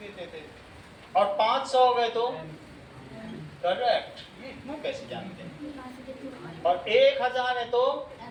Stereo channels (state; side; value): identical; both; correlation 1.00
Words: देते थे। और 500 हो गए तो करेक्ट। ये इतना कैसे जानते हैं? और 1000 है तो,